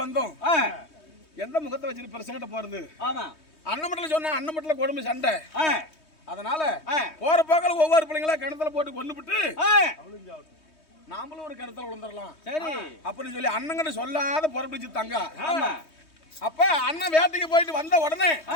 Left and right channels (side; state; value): right; late; 3.2 ms